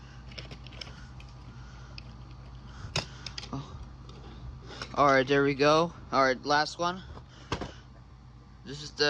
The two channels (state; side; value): identical; both; correlation 1.00